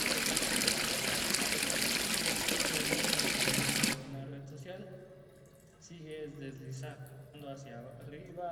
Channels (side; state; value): both; identical; correlation 1.00